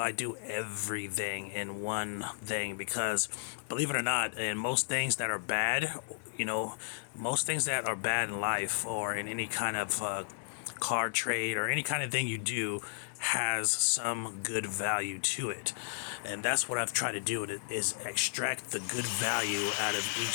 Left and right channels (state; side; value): silent; right; digital silence